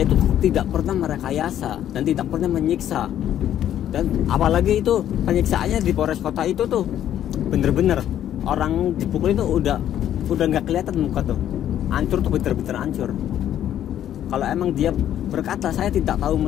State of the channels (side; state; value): right; quieter; 11.0 dB